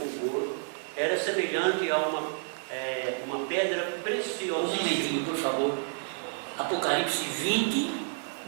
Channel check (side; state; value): left; silent; 58 dB below the other